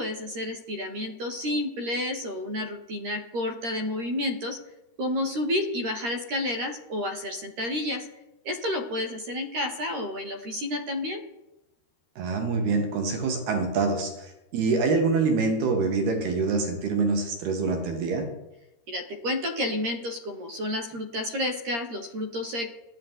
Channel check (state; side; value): late; left; 13 ms